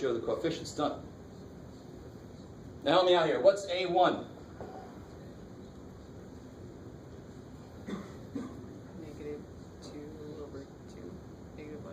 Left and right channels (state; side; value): identical; both; correlation 1.00